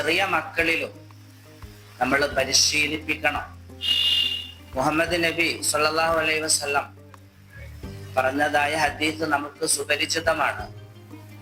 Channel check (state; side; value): identical; both; correlation 1.00